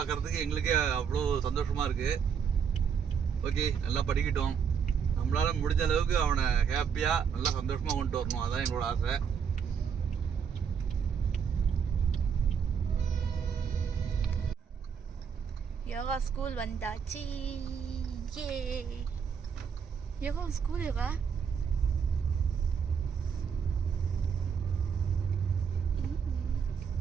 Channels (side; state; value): left; quieter; 7.0 dB